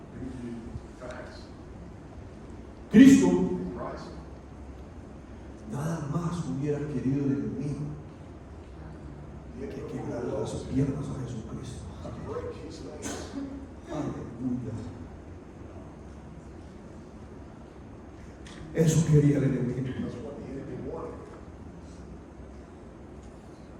Cristo nada más hubiera querido de mí que quebrar las piernas a Jesucristo. Aleluya. Eso quería el enemigo.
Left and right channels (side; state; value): both; identical; correlation 1.00